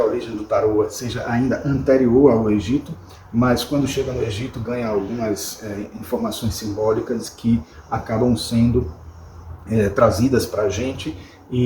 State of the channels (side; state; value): both; identical; correlation 1.00